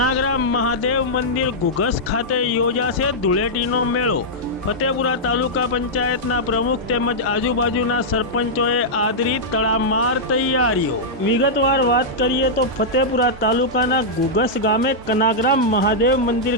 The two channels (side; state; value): both; normal; correlation -0.08